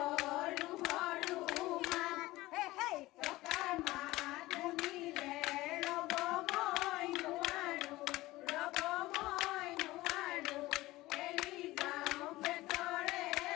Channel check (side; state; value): right; quieter; 18.5 dB